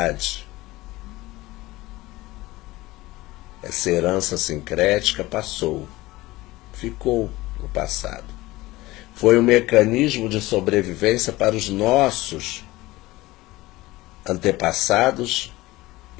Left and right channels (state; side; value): quieter; right; 19.1 dB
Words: Essa herança sincrética passou, ficou no passado. Foi um mecanismo de sobrevivência para os nossos antepassados